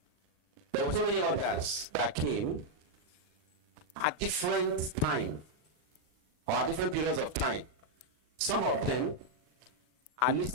there were so many others that came at different time or at different periods of time. Some of them are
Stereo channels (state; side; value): late; left; 39 ms